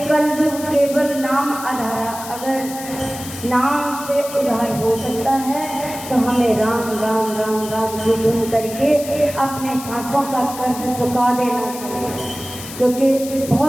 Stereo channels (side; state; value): left; noise; hiss, 12 dB below the sound